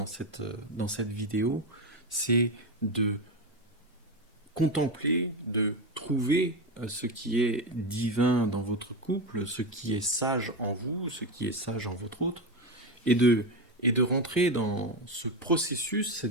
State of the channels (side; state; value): both; normal; correlation 0.15